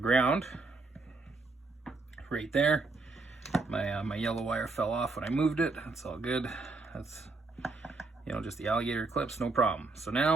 right there. My yellow wire fell off when I moved it. That's all good. That's, you know, just the alligator clips, no problem. So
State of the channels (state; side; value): quieter; left; 3.6 dB